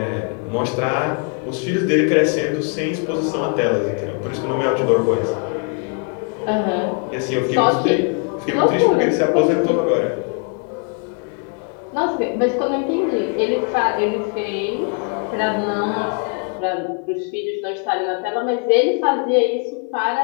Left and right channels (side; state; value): right; quieter; 38.1 dB